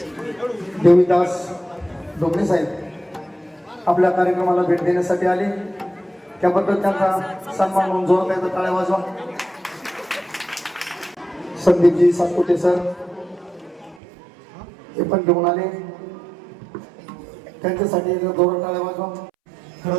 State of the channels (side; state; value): left; drops out; at 14.0 s